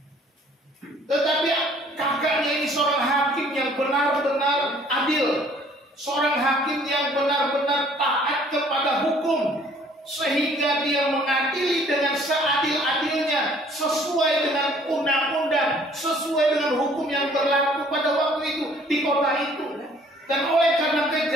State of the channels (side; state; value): both; normal; correlation 0.57